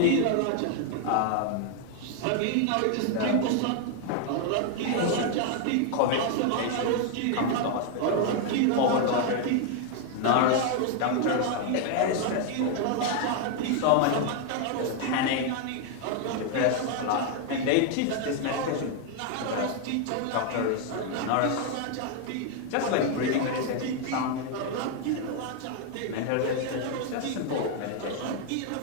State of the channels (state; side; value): different; both; correlation 0.00